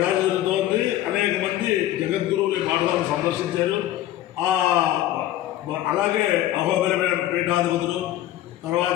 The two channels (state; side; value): quieter; right; 13.7 dB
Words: అనేక మంది జగద్గురువులు ఈ పాఠశాలను సందర్శించారు. అలాగే అహోబిల పీఠాధిపతులు,